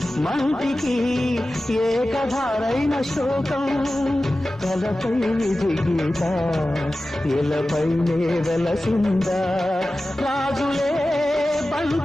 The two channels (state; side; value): normal; both; correlation 0.95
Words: మంటికి ఏకధారైన శోకం తలపై దిగీత ఇలపైనే వెలసిందా రాజులే